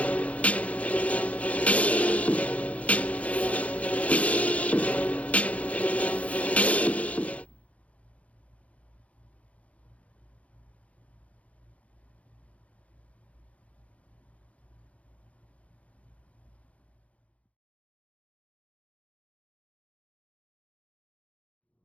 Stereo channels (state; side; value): late; right; 0.065 ms